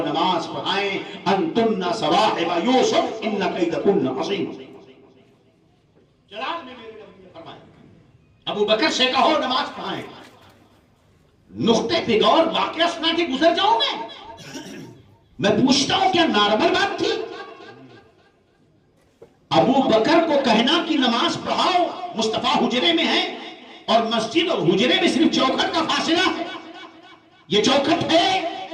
نماز پڑھائیں، انتن صواحب یوسف ان کیدکن عظیم. جلال میں میرے نبی نے فرمایا ابو بکر سے کہو نماز پڑھائیں. نقطے پہ غور، واقعہ سنا کے گزر جاؤں میں پوچھتا ہوں کیا نارمل بات تھی؟ ابو بکر کو کہنا کہ نماز پڑھاؤ، مصطفیٰ حجرے میں ہے اور مسجد اور حجرے میں صرف چوکھٹ کا فاصلہ ہے. یہ چوکھٹ ہے،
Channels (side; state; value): both; identical; correlation 1.00